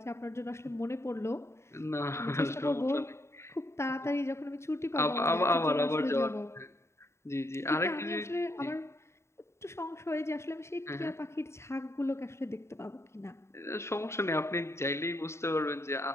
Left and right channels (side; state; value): right; late; 0.13 ms